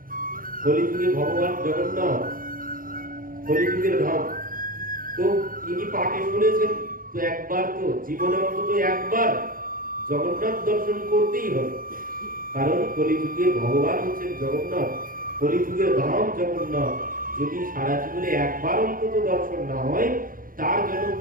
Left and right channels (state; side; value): late; left; 0.41 ms